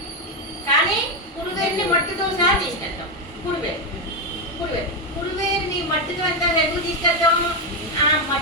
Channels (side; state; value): both; normal; correlation 0.07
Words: కానీ పురువేరుని మట్టితో సహా తీసుకెళ్తాం. పురువేరు పురువేరు పురువేరుని మట్టితో అంతా ఎందుకు తీసుకెళ్తాం? ఆ